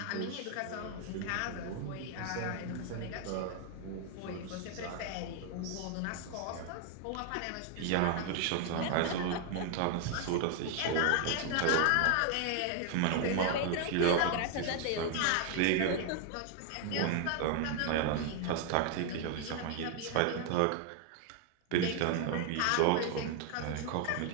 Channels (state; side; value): different; both; correlation 0.00